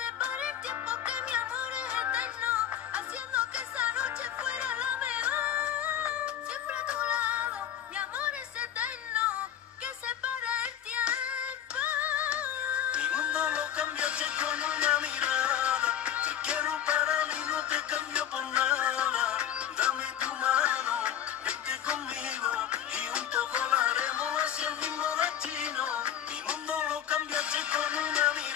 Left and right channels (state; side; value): quieter; right; 10.3 dB